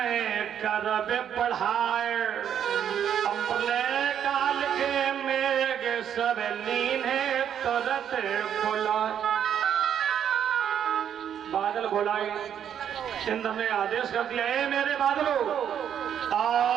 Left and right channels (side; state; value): left; quieter; 9.1 dB